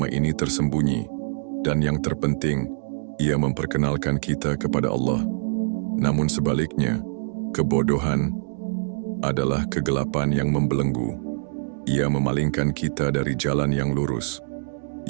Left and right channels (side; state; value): left; silent; digital silence